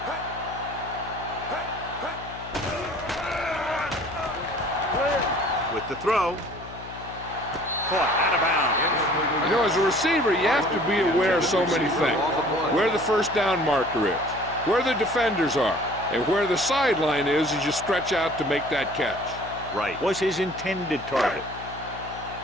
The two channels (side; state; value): left; noise; hum, 15 dB below the sound